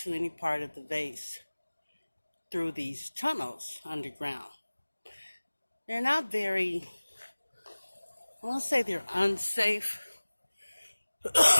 any part of the base through these tunnels underground. They're not very, I won't say they're unsafe.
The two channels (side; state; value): both; inverted; correlation -1.00